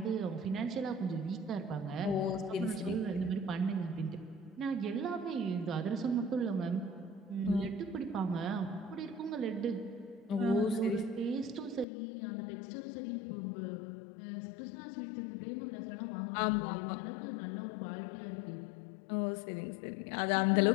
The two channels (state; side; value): drops out; right; at 11.9 s